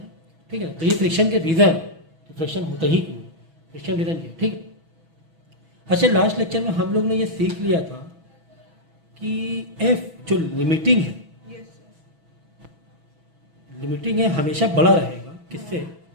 ठीक है। तो ये फ्रिक्शन के रीज़न, तो फ्रिक्शन होता ही क्यों है, फ्रिक्शन रीज़न ये, ठीक है। अच्छा लास्ट लेक्चर में हम लोग ने ये सीख लिया था कि एफ जो लिमिटिंग है, लिमिटिंग है हमेशा बड़ा रहेगा किससे,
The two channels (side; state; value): left; late; 6.1 ms